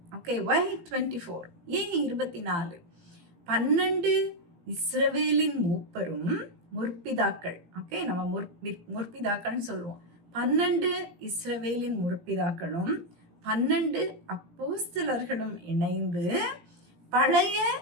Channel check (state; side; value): late; left; 17 ms